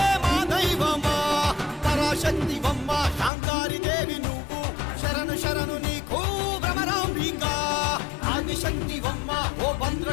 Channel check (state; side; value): drops out; right; at 3.3 s